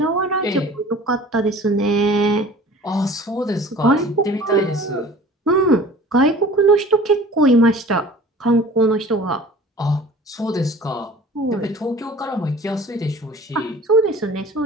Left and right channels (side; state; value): both; normal; correlation 0.45